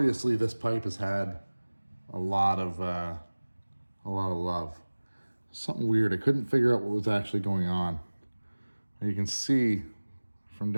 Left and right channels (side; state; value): both; inverted; correlation -1.00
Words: this pipe has had a lot of love. Something weird. I couldn't figure out what was actually going on. You can see from